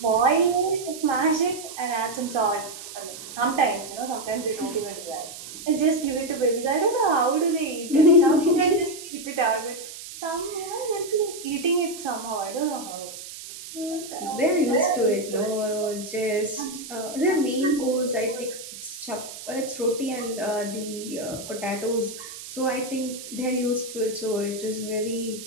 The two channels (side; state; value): right; noise; hiss, 12 dB below the sound